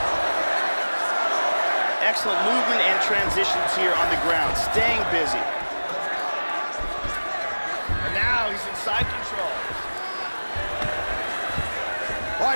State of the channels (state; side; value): inverted; both; correlation -1.00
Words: Excellent movement and transitions here on the ground, staying busy. And now he's in side control. All